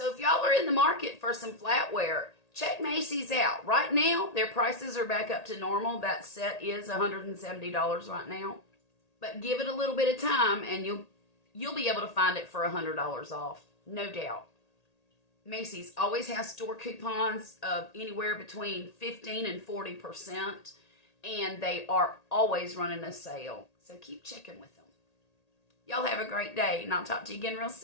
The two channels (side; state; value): right; late; 1.8 ms